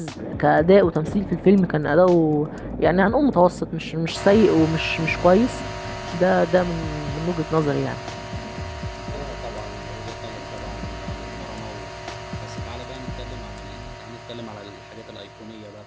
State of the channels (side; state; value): both; identical; correlation 1.00